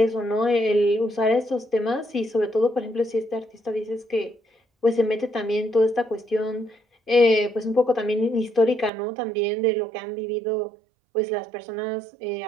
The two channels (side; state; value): left; drops out; at 8.9 s